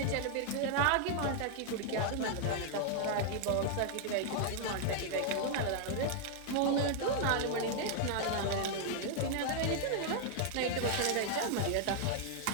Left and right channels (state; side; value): different; both; correlation 0.00